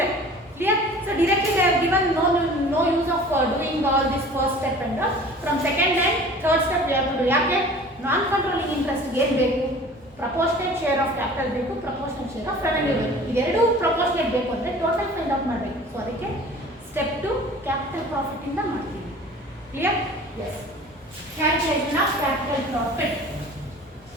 Clear? So directly they have given no use of doing all this first step and from second and third step we have to do. ಯಾಕೆ ನಾನ್ controlling interest ಏನು ಬೇಕು? ಪ್ರಪೋರ್ಷನೇಟ್ ಶೇರ್ ಆಫ್ ಕ್ಯಾಪಿಟಲ್ ಬೇಕು, proportionate share of revenue ಬೇಕು. ಇದೆರಡು proportionate ಬೇಕು ಅಂದರೆ total find out ಮಾಡಬೇಕು. So ಅದಕ್ಕೆ ಸ್ಟೆಪ್ 2 ಕ್ಯಾಪಿಟಲ್ ಪ್ರಾಫಿಟ್ ಇಂದ ಮಾಡ್ತೀವಿ. Clear? Yes. Calculation of capital profit.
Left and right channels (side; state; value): both; normal; correlation 0.44